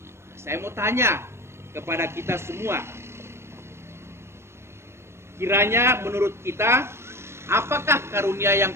Saya mau tanya kepada kita semua, kiranya menurut kita, apakah karunia yang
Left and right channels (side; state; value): left; late; 0.12 ms